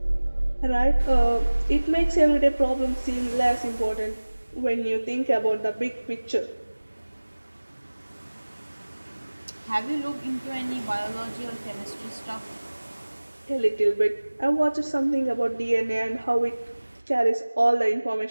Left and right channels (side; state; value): both; inverted; correlation -1.00